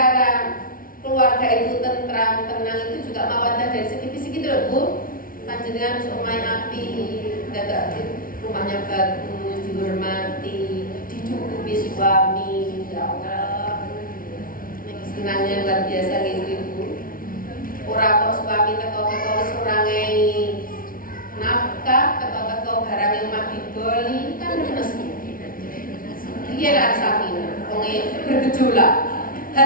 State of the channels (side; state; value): right; late; 0.41 ms